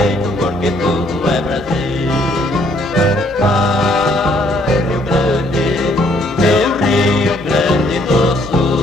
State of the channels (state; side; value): normal; both; correlation 0.65